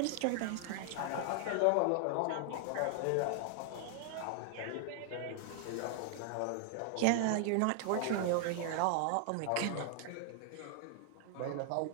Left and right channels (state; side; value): different; both; correlation -0.01